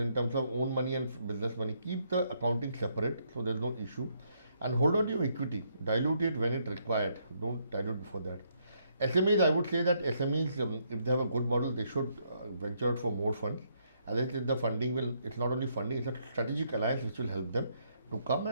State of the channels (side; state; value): both; inverted; correlation -0.74